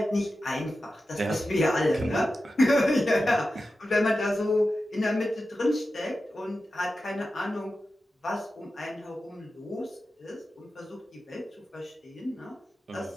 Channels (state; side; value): normal; both; correlation 0.92